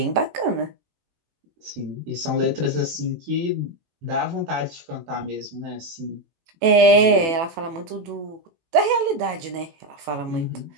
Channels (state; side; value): late; left; 18 ms